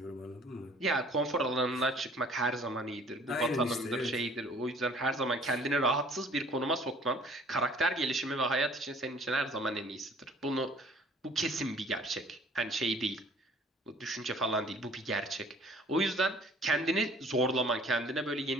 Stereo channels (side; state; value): both; normal; correlation 0.54